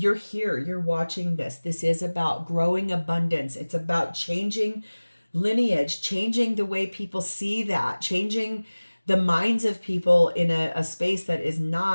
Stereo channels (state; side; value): inverted; both; correlation -1.00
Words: here. You're watching this. This is about growing abundance. It's about changing lineage, changing the way people see that, changing the minds of people in a space that is